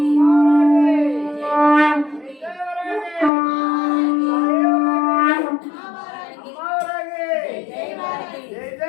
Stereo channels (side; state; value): right; drops out; at 3.3 s